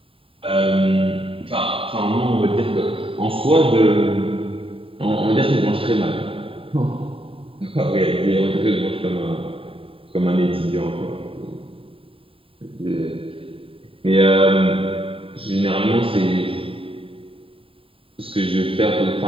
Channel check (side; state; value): left; late; 0.27 ms